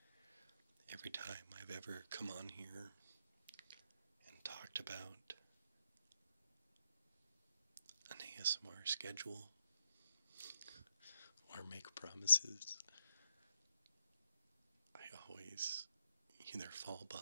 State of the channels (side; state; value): both; inverted; correlation -0.79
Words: every time I've ever come on here and talked about an ASMR schedule or make promises. I always either fall